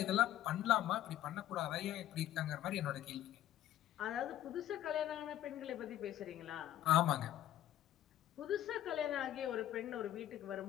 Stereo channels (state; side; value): quieter; right; 12.5 dB